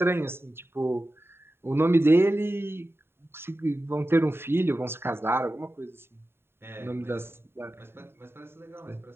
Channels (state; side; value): late; left; 0.11 ms